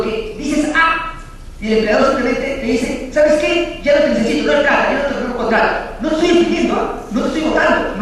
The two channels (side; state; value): both; identical; correlation 1.00